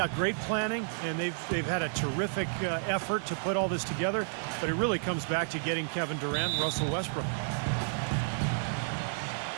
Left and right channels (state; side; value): silent; left; digital silence